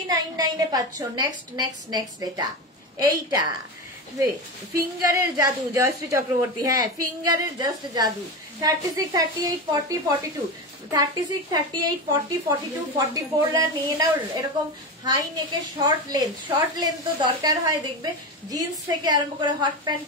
এ পাচ্ছ। নেক্সট এটা এইটা ফিঙ্গারের জাদু, জয়শ্রী চক্রবর্তী, হ্যাঁ ফিঙ্গারের জাস্ট জাদু। 36, 38, 40, 42, 36, 38, 40, 42, 44 রা নিয়ে নাও। এরকম হাই নেকের শর্ট লেন্থ তো দরকার হয়, দেখবে জিন্স থেকে আরম্ভ করে হট প্যান্ট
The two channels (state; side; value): normal; both; correlation 0.20